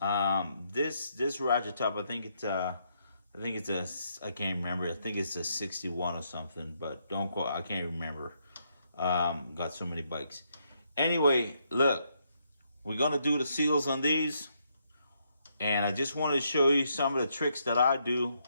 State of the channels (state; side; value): inverted; both; correlation -0.76